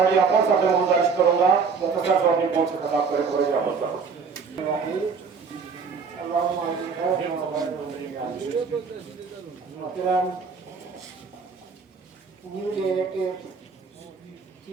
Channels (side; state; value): left; quieter; 5.4 dB